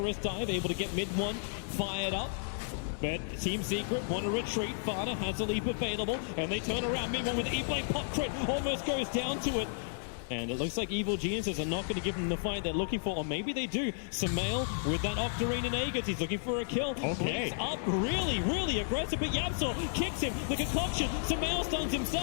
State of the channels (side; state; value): right; silent; digital silence